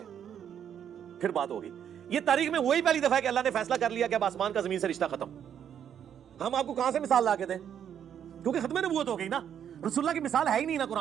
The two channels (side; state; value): left; quieter; 9.0 dB